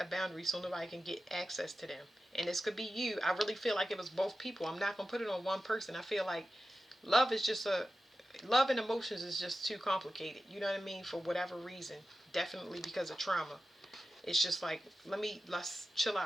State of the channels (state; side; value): normal; both; correlation 0.93